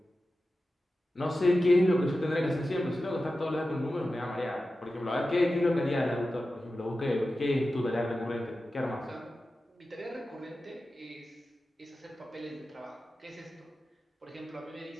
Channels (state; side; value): normal; both; correlation 0.93